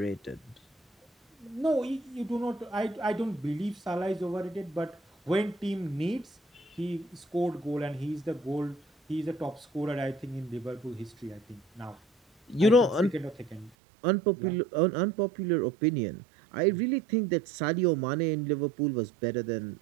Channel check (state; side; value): drops out; left; at 13.7 s